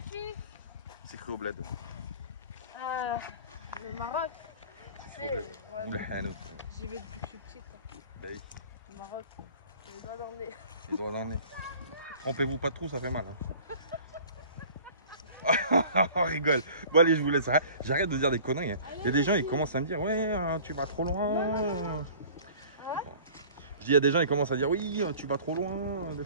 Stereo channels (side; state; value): both; inverted; correlation -0.46